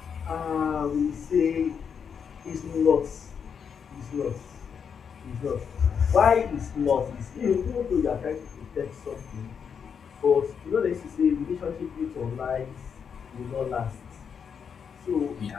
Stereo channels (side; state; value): right; quieter; 6.9 dB